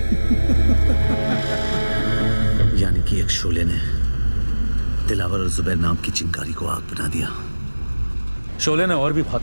यानी कि एक शोले ने दिलावर और जुबैर नाम की चिंगारी को आग बना दिया। शोले ने और भी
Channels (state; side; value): inverted; both; correlation -1.00